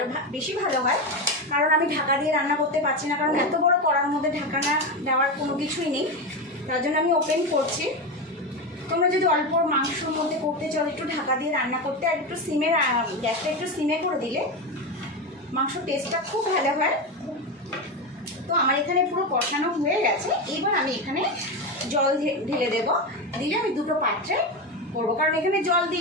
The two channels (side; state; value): both; normal; correlation 0.16